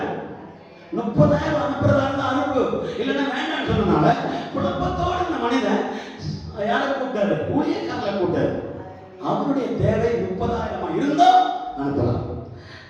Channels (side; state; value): both; identical; correlation 1.00